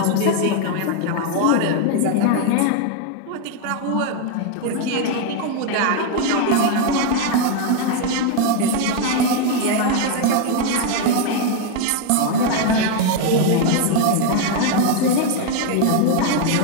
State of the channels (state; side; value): different; both; correlation 0.01